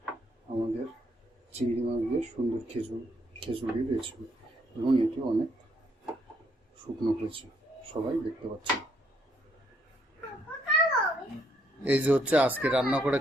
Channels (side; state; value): both; normal; correlation 0.71